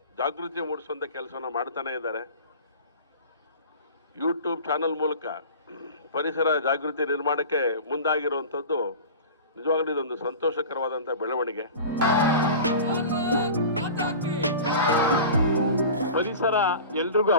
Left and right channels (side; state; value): both; inverted; correlation -0.36